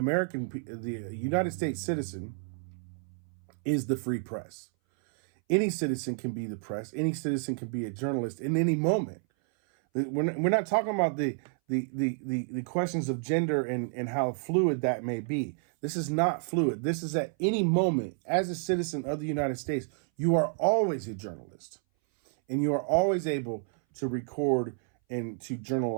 United States citizen is the free press. Any citizen can be the press. Any citizen can be a journalist in any moment. We're not talking about the questions of gender and how fluid that may be. This is not fluid. This is at any moment, as a citizen of the United States, you are always a journalist. And you are always able to record and to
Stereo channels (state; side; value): silent; left; 58 dB below the other